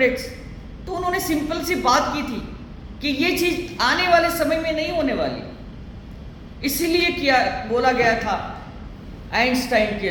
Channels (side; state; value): both; identical; correlation 1.00